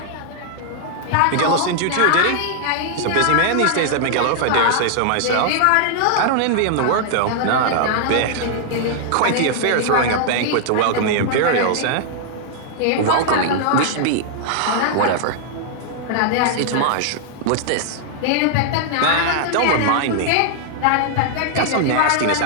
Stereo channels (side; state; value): both; different; correlation 0.00